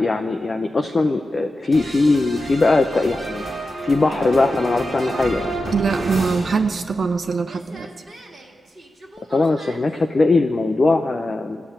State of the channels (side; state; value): both; normal; correlation 0.91